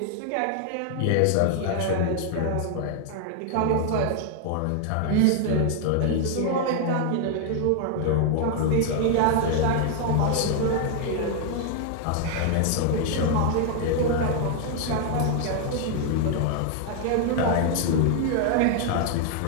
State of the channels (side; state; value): both; different; correlation 0.00